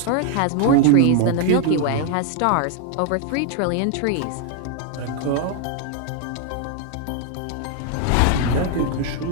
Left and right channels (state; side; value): different; both; correlation 0.01